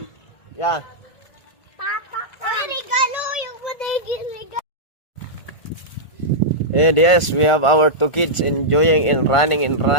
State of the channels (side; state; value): right; late; 1.5 ms